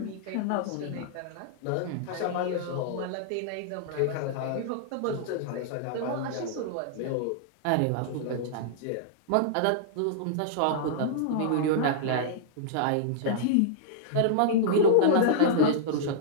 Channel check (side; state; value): both; different; correlation -0.02